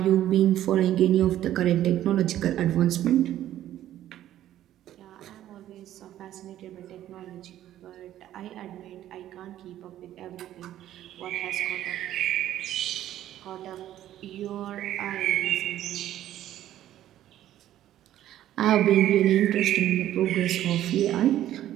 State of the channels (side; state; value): left; quieter; 12.6 dB